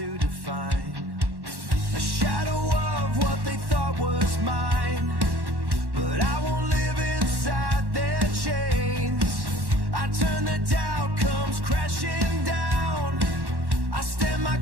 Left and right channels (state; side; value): late; left; 1.1 ms